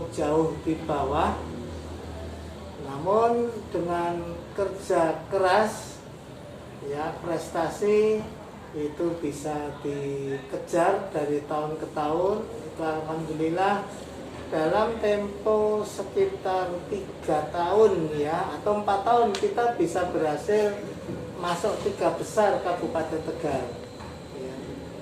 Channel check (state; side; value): identical; both; correlation 1.00